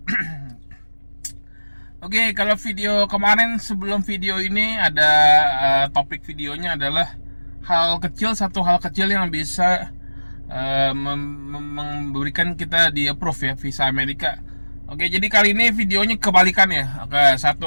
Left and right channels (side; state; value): both; inverted; correlation -1.00